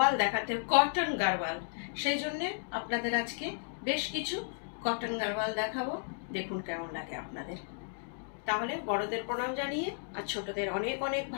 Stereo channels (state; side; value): silent; right; digital silence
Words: দেখাতে, কটন গারওয়াল, সেই জন্যে আপনাদের আজকে বেশ কিছু কটন গারওয়াল দেখাবো। দেখুন কেমন লাগে আপনাদের। তাহলে বড়দের প্রণাম জানিয়ে আর ছোটদের অনেক অনেক